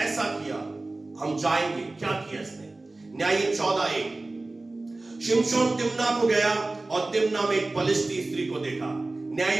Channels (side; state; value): left; quieter; 3.0 dB